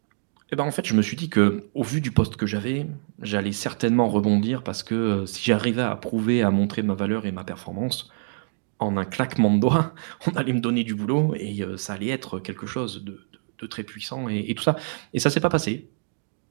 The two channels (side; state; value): left; silent; digital silence